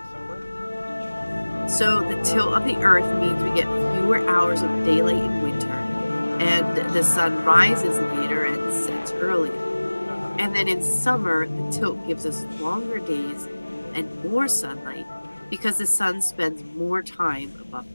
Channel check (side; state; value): both; inverted; correlation -1.00